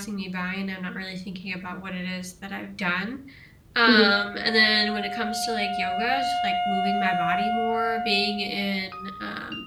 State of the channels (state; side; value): identical; both; correlation 1.00